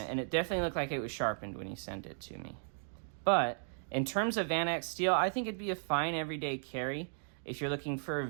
and it definitely looked like it was sharpened when he sent it to me. But in terms of Vanax steel, I think it'd be a fine everyday carry if you're looking for a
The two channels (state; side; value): silent; left; digital silence